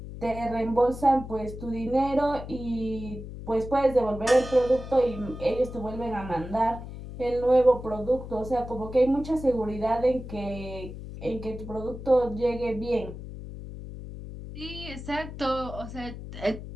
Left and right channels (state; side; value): noise; left; hum, 11 dB below the sound